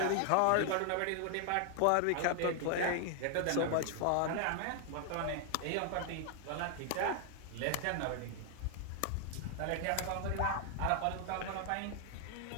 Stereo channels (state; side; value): different; both; correlation 0.00